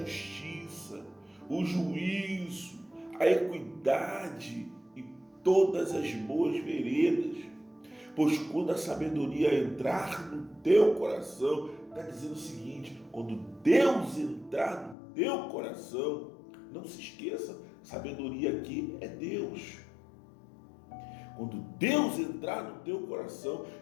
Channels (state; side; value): drops out; right; at 15.0 s